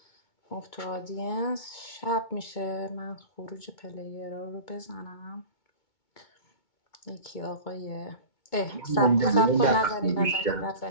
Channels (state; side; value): late; right; 2.2 ms